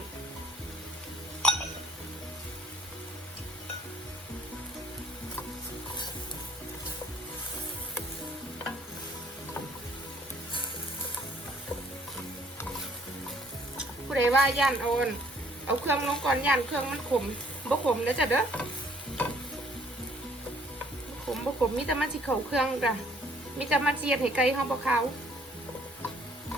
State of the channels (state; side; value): normal; both; correlation 0.60